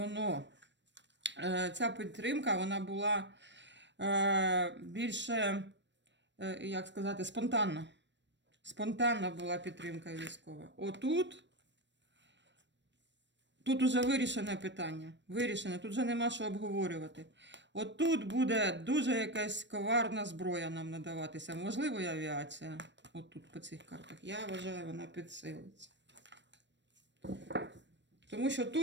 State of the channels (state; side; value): late; left; 0.53 ms